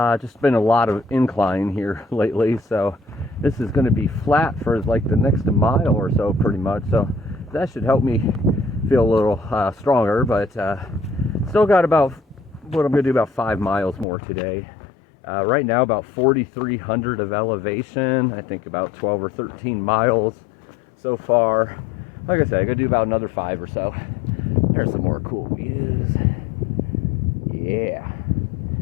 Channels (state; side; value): drops out; right; at 14.1 s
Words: Just been a lot of incline here lately, so this is going to be flat for like the next mile or so pretty much, so that should help me feel a little stronger, but still got about what I'm going to do about 5 miles more today. Right now about 4,300 of elevation. I think about 12 or 13 miles so far. Like I said, I'm gonna do about another 5 or so. There's some more cool views. Yeah.